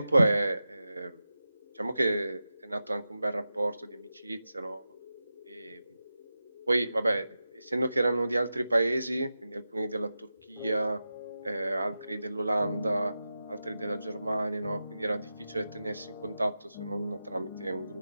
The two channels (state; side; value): inverted; both; correlation -0.92